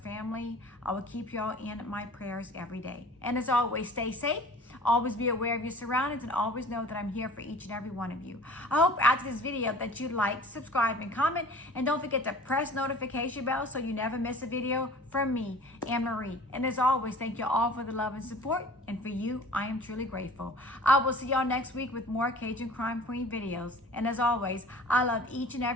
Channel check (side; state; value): both; normal; correlation 0.45